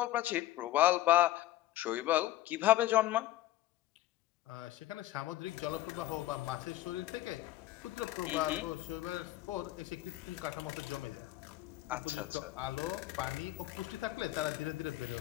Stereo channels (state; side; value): quieter; right; 15.4 dB